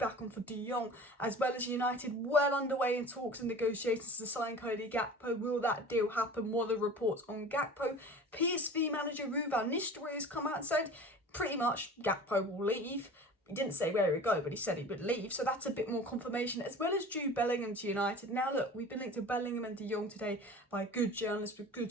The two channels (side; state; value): both; normal; correlation 0.39